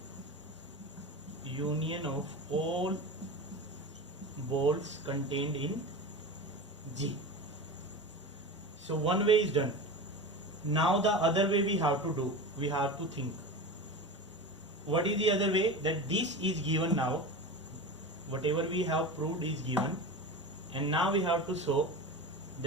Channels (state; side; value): normal; both; correlation 0.28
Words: union of all balls contained in G. So one way is done. Now the other way we have to do, we have to think. What is the other way? That this is given now, whatever we have proved is given, and now we have to show